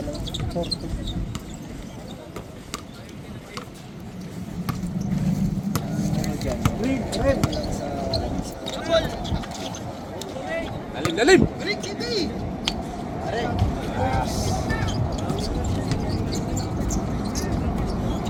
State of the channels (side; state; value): both; identical; correlation 1.00